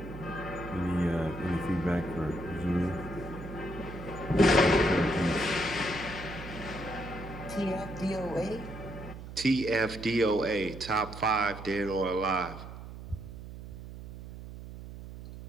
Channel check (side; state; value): right; noise; hum, 12 dB below the sound